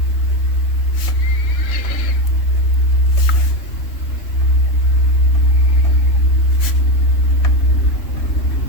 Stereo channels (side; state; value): right; late; 3.3 ms